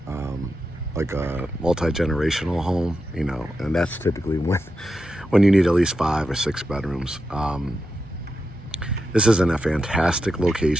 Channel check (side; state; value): both; normal; correlation 0.87